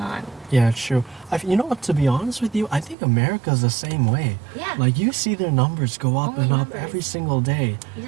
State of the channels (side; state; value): left; drops out; at 3.0 s